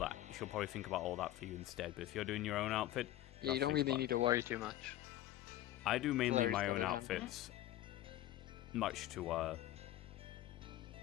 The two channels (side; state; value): right; quieter; 14.1 dB